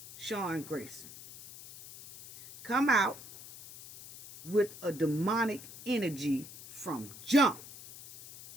Sean Grayson, come out with a demonic energy from jump.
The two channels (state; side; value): noise; left; hiss, 16 dB below the sound